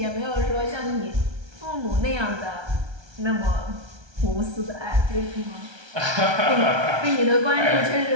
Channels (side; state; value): left; late; 1.3 ms